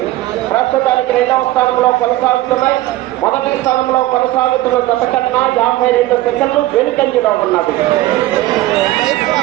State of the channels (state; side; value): quieter; left; 16.5 dB